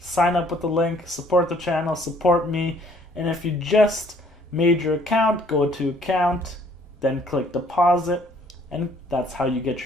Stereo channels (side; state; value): both; normal; correlation 0.60